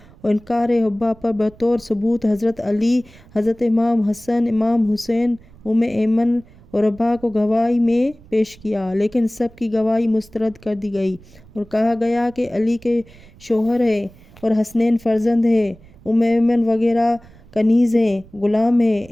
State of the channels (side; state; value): right; noise; rumble, 24 dB below the sound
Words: اور انکار حبہ پر بطور ثبوت حضرت علی، حضرت امام حسن، امام حسین، ایمن اور رباح کو گواہی میں پیش کیا، لیکن سب کی گواہی مسترد کر دی گئی اور کہا گیا کہ علی کے شوہر ہیں اور حسنین فرزند ہیں، ایمن وغیرہ کنیز ہیں، غلام ہیں،